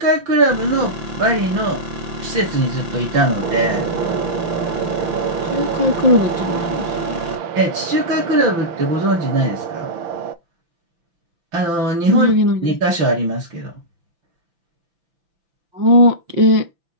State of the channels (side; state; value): left; late; 5.9 ms